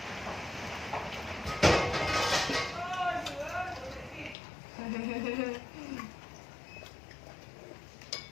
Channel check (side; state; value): right; drops out; at 4.4 s